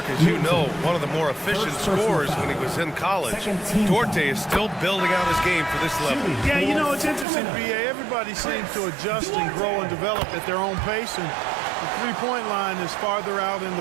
as you know, one of the more efficient scorers when he was in college. Duarte is still building out his game for this level. Yeah, you know, it's interesting, B.A. Everybody seems to adjust and grow and develop at their own pace, and the three-point line is farther out in the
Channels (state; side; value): drops out; left; at 7.2 s